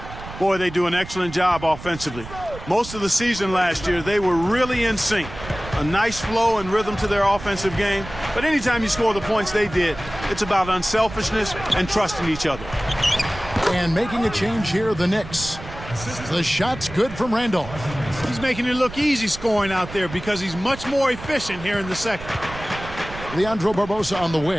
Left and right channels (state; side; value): noise; right; rumble, 13 dB below the sound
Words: Boy, they do an excellent job offensively. Most of the season last year, they were really in sync. A nice flow and rhythm to their offensive game. But anytime you score the points they did, it's about unselfishness and trusting each other. And making a change here, the Knicks. The shot's good from Randolph. He's making it look easy scoring out there because he's much more efficient here in the second. Leandro Barbosa on the